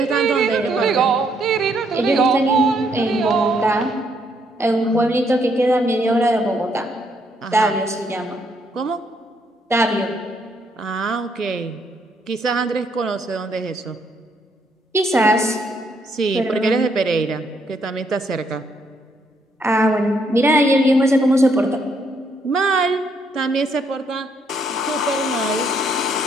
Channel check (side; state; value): both; normal; correlation 0.72